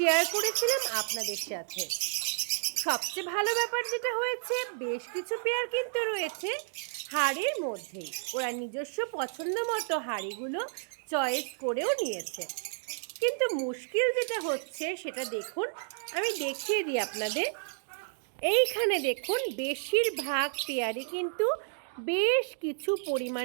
করেছিলাম আপনাদের সাথে। সবচেয়ে ভালো ব্যাপার যেটা হয়েছে, বেশ কিছু পেয়ার কিন্তু রয়েছে হাঁড়ির মধ্যেই। ওরা নিজস্ব পছন্দ মতো হাঁড়িগুলো চয়েস করেও নিয়েছে। কিন্তু মুশকিল যেটা হচ্ছে সেটা দেখুন, আমি দেখিয়ে দিই আপনাদের। এইখানে দেখুন বেশিরভাগ পেয়ারে কিন্তু বেশ কিছু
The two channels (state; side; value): silent; left; digital silence